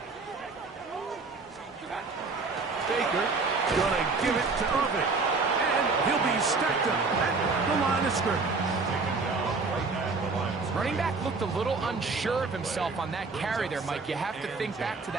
Baker gonna give it to Irvin. And he'll be stacked up at the line of scrimmage. Taken down right at the line of scrimmage. Running back looked a little unsure of himself on that carry there, Mike. You have to think back to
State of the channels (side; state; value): left; quieter; 4.1 dB